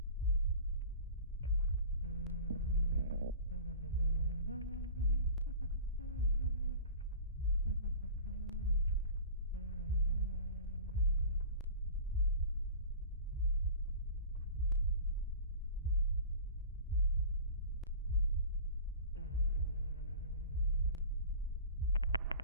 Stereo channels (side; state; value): both; inverted; correlation -0.39